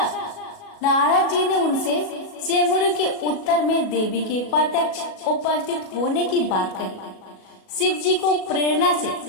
नारद जी ने उनसे सेमुड़ी के उत्तर में देवी के प्रत्यक्ष उपस्थित होने की बात कही। शिव जी को प्रेरणा से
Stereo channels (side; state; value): right; late; 37 ms